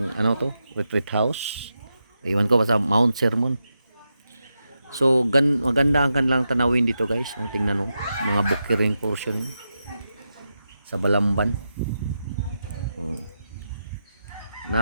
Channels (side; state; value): both; inverted; correlation -0.88